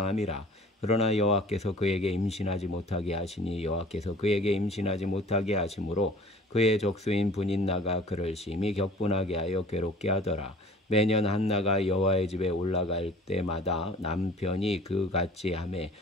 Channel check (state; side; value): normal; both; correlation 0.48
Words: 그러나 여호와께서 그에게 임신하지 못하게 하시니 여호와께서 그에게 임신하지 못하게 하심으로 그의 적수인 분인나가 그를 심히 격분하게 하여 괴롭게 하더라. 매년 한나가 여호와의 집에 올라갈 때마다 남편이 그 같이 하매